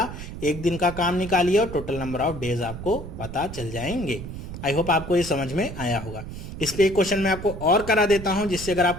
एक दिन का काम निकालिए और टोटल नंबर ऑफ डेज आपको पता चल जाएंगे। आई होप आपको ये समझ में आया होगा। इस पे एक क्वेश्चन मैं आपको और करा देता हूं, जिससे अगर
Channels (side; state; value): right; noise; rumble, 10 dB below the sound